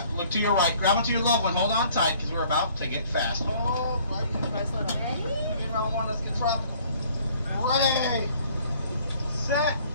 look to your right, grab onto your loved one, hold on tight because we're about to get fast. Oh, right, ready? Round one, let's get tropical. Ready, set,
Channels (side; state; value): both; inverted; correlation -0.57